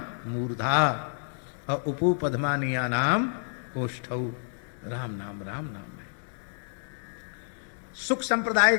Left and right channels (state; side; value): silent; right; digital silence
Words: मूर्धा और उपू पद्मानिया नाम ओष्ठौ, राम नाम है। सुख संप्रदाय